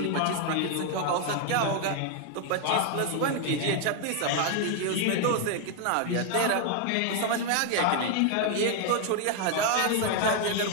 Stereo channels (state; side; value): different; both; correlation 0.00